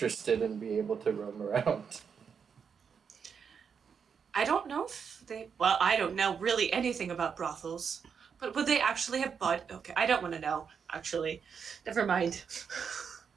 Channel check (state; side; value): quieter; left; 6.6 dB